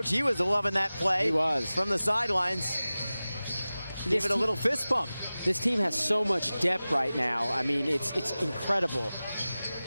He was loving that play. He was. From the sidelines. Give it a little fist bump. This team has so much depth right now. I mean, it's incredible.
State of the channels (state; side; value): inverted; both; correlation -0.97